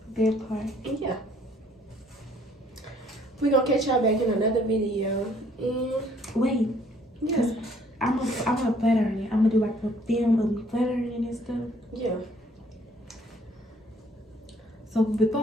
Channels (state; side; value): normal; both; correlation 0.61